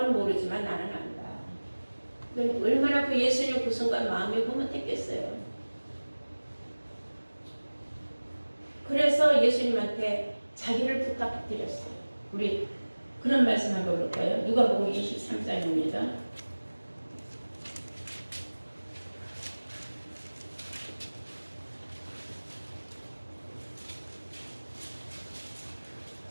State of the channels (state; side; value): inverted; both; correlation -1.00